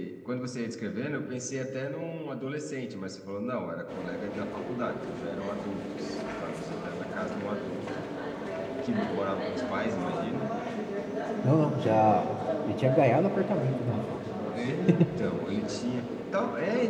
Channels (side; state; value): both; identical; correlation 1.00